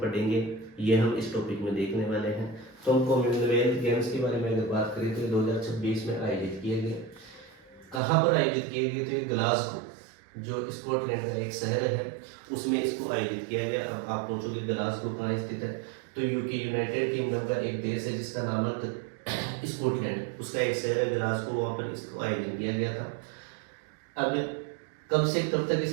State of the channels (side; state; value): left; drops out; at 8.0 s